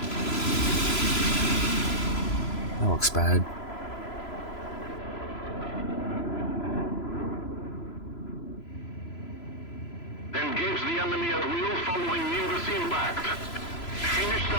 That looks bad. Engage the enemy at will following Nimbus impact. Finish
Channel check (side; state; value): right; late; 3.0 ms